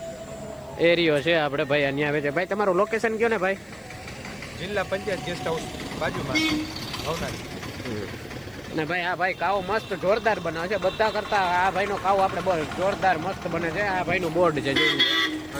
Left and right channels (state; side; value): noise; left; hiss, 30 dB below the sound